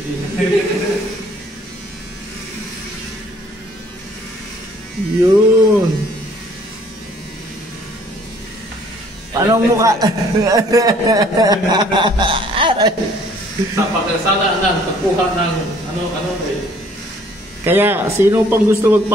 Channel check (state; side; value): normal; both; correlation 0.58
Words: Yun. Anong mukha? Sa pagkasala ng pagkuha ng ano eh. Kaya, sino pang gusto